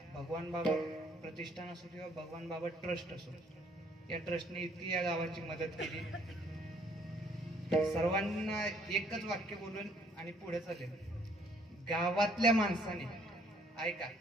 भगवान बाबा प्रतिष्ठान असो किंवा भगवान बाबा ट्रस्ट असो या ट्रस्टने इतकी या गावाची मदत केली. सर्वांना एकच वाक्य बोलून आणि पुढे चालेल. गावातल्या माणसाने ऐका,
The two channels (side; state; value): both; normal; correlation 0.63